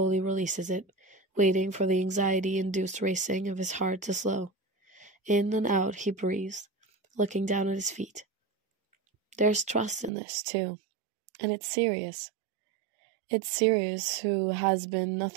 releases it, waiting for the anxiety-induced racing of his heart to slow. In and out he breathes, looking down at his feet. There's trust in this, too, and it's Sirius. It's Sirius who has been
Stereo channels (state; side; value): drops out; left; at 10.1 s